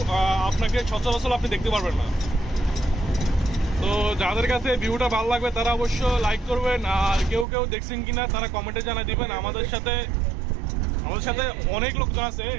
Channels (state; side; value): drops out; left; at 7.5 s